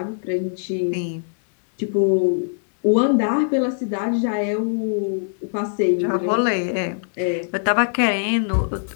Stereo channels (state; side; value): silent; right; 63 dB below the other